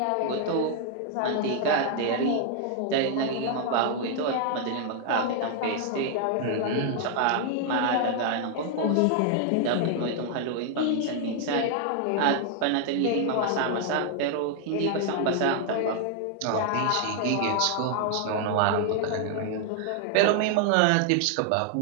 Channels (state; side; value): different; both; correlation 0.00